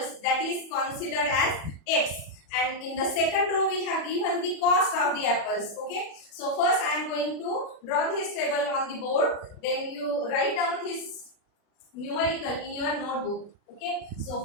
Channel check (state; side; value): late; right; 40 ms